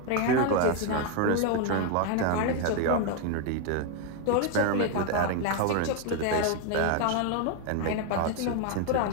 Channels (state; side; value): different; both; correlation 0.01